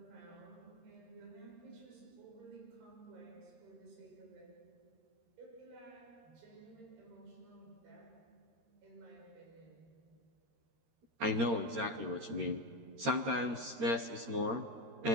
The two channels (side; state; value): left; late; 13 ms